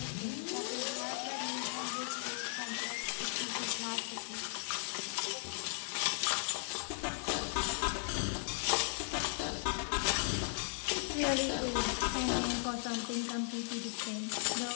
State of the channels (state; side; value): silent; right; digital silence